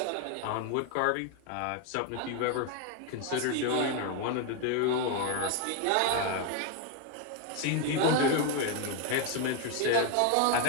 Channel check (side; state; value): both; different; correlation 0.01